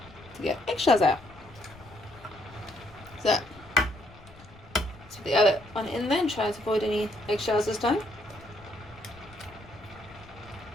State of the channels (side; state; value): left; noise; rumble, 22 dB below the sound